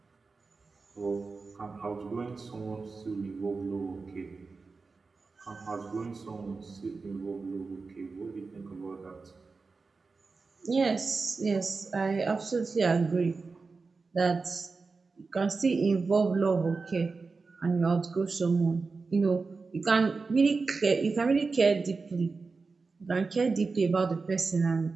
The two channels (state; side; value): quieter; left; 4.3 dB